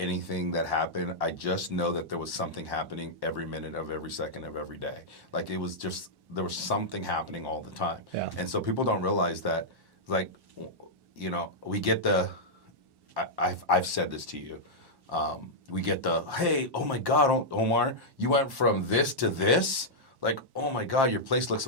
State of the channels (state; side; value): late; left; 1.1 ms